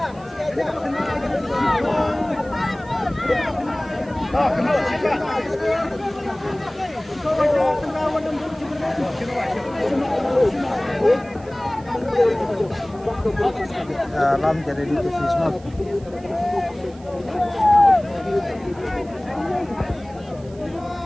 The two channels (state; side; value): noise; right; hiss, 26 dB below the sound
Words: Lam jadi di Fisma.